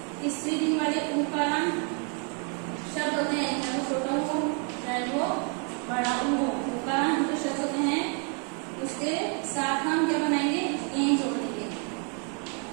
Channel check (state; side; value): quieter; left; 39.2 dB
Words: स्त्रीलिंग वाले उकारांत शब्द होते हैं, चाहे वो छोटा हो चाहे वो बड़ा हो, उकारांत जो शब्द होते हैं उसके साथ हम क्या बनाएंगे, ए जोड़ देंगे,